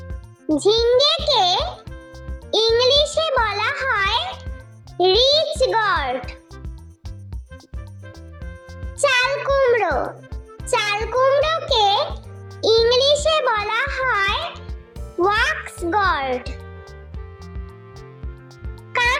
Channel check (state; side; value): identical; both; correlation 1.00